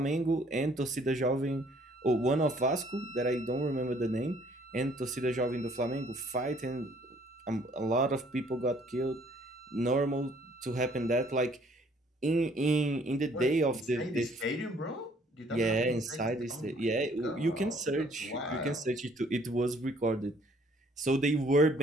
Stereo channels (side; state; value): both; normal; correlation 0.61